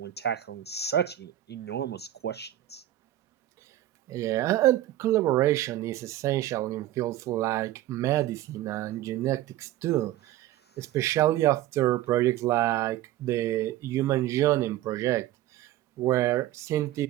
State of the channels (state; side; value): quieter; left; 14.0 dB